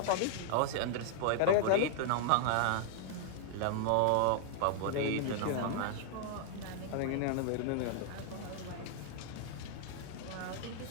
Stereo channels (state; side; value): different; both; correlation 0.00